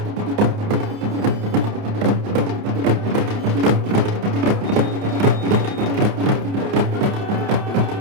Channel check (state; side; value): late; left; 29 ms